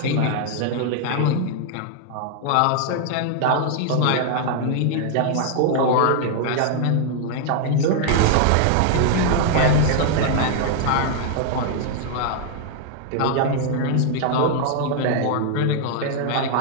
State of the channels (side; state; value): both; different; correlation 0.00